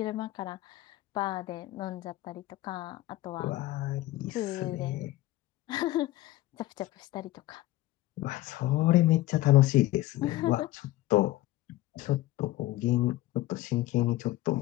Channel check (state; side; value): quieter; right; 16.5 dB